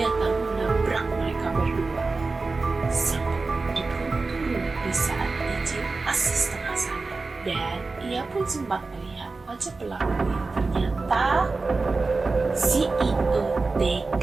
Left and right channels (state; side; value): quieter; left; 3.8 dB